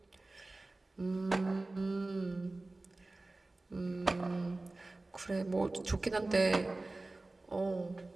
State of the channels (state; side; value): quieter; left; 3.0 dB